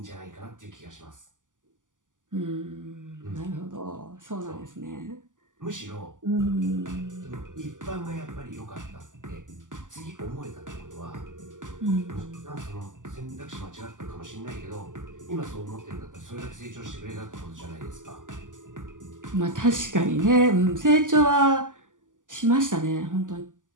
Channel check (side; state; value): left; late; 0.88 ms